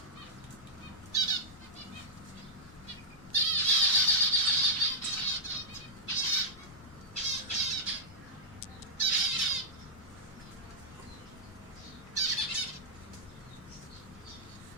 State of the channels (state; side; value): noise; left; rumble, 20 dB below the sound